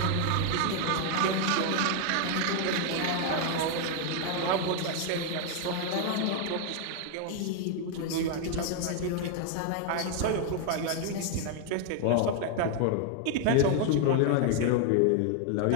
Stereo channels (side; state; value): both; different; correlation 0.00